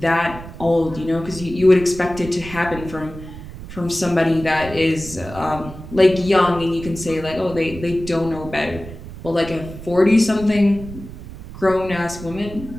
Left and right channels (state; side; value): noise; right; rumble, 13 dB below the sound